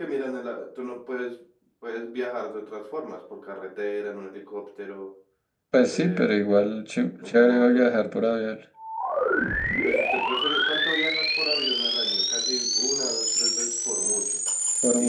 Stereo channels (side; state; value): both; identical; correlation 1.00